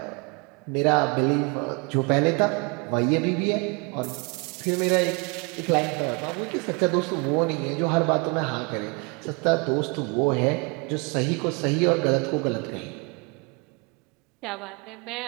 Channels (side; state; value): left; quieter; 31.1 dB